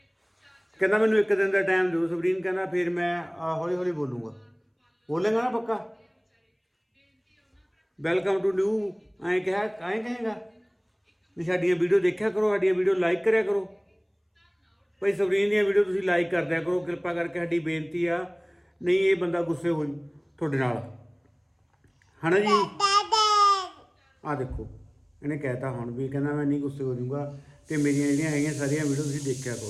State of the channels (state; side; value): identical; both; correlation 1.00